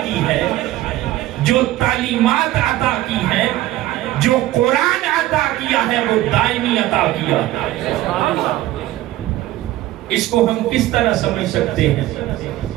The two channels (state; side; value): quieter; left; 15.6 dB